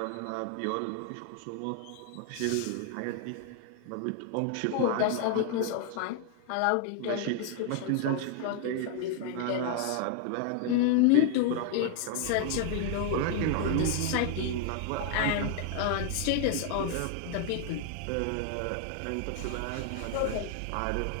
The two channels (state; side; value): different; both; correlation 0.00